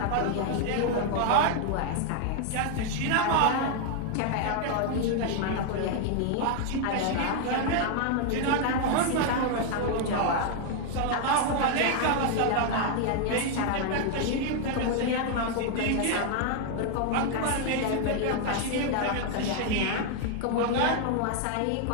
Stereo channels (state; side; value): different; both; correlation 0.00